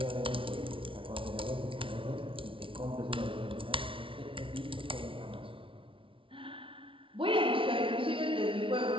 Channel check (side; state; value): left; late; 0.25 ms